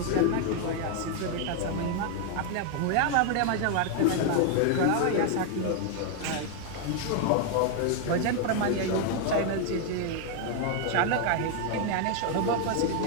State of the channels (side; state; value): both; different; correlation 0.00